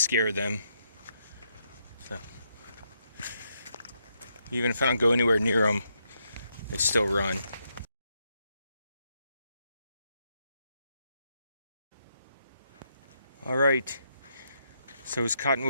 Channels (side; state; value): both; inverted; correlation -0.79